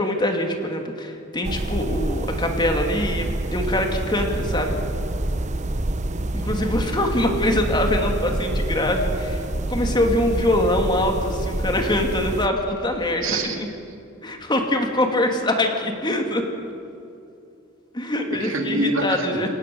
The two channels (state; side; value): normal; both; correlation 0.45